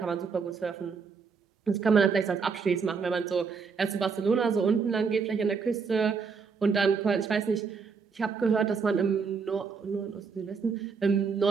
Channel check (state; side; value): quieter; left; 5.4 dB